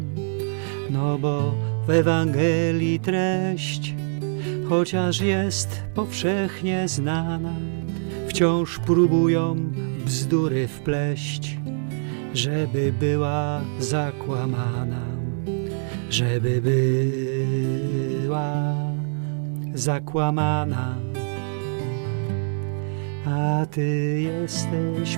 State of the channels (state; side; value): silent; left; 58 dB below the other